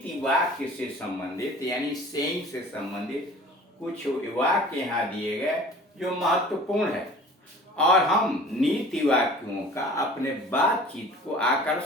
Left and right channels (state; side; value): normal; both; correlation 0.45